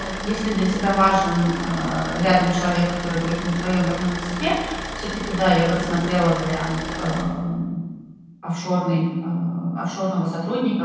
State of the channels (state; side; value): identical; both; correlation 1.00